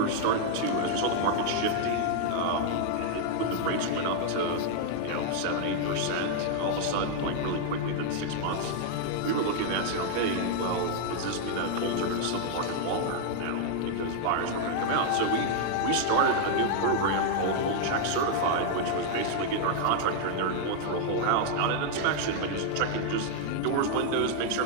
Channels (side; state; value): both; different; correlation 0.00